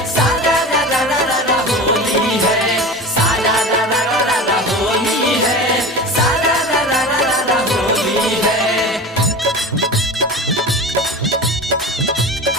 सारा रा रा रा रा रा होली है, सारा रा रा रा रा रा होली है, सारा रा रा रा रा रा होली है।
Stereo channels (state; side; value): normal; both; correlation 0.31